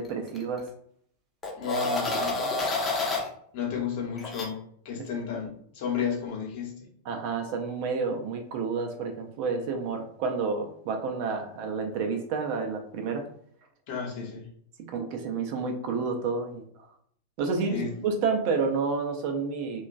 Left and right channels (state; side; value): normal; both; correlation -0.04